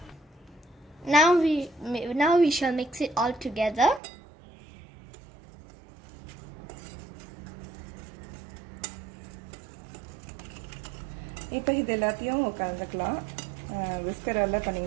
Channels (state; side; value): drops out; left; at 4.0 s